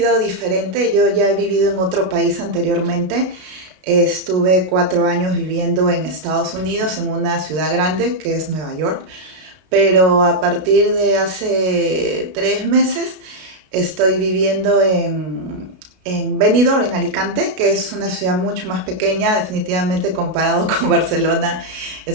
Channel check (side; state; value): left; late; 33 ms